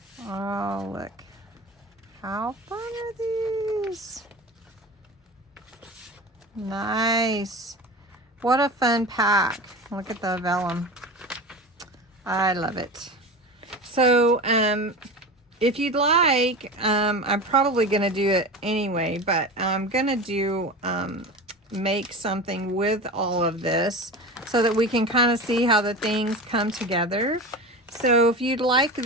Oh, look. How fun are these? Nice. What a fun pack. Look at the vellum. I love it. So, if you'd like, I'm probably going to do it anyway, but I'm going to do, make something with all of this so that we can kind of see how the things come together. So if you'd like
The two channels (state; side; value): normal; both; correlation 0.29